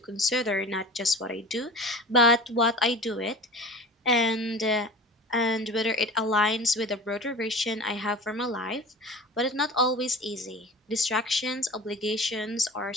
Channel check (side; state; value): both; normal; correlation 0.37